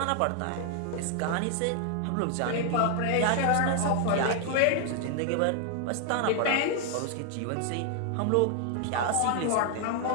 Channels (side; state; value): both; different; correlation 0.00